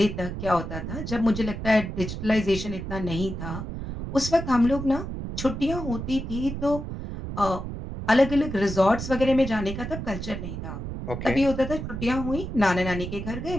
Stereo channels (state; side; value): noise; right; rumble, 6 dB below the sound